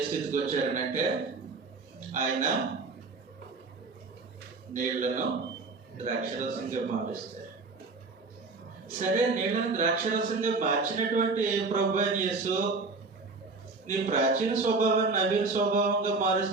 స్థితికి వచ్చారనంటే, ఆయన నీళ్లను ద్రాక్షరసంగా మారుస్తారు. సరే, నీళ్లను ద్రాక్షరసంగా మార్చినటువంటి ప్రభువైన యేసు నీ ప్రాచీన స్వభావాన్ని నవీన స్వభావంగా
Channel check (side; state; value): left; quieter; 3.9 dB